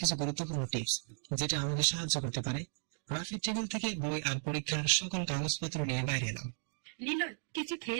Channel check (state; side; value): silent; left; digital silence